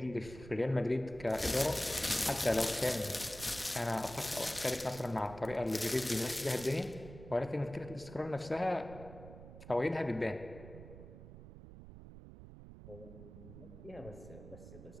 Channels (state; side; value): noise; right; rumble, 15 dB below the sound